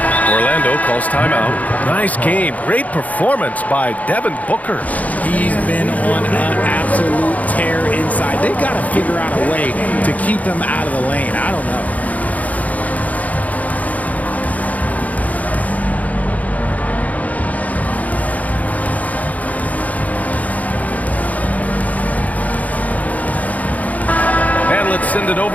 Orlando calls timeout. Nice game. Great performance by Devin Booker. He's been on an absolute tear inside. They've got to figure out a way to keep him out of the lane. I don't know. Let's send it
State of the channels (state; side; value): late; right; 0.074 ms